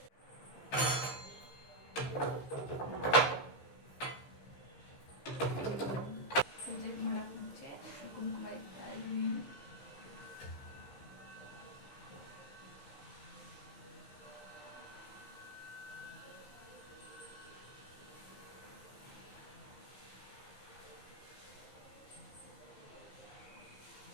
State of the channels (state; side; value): late; right; 15 ms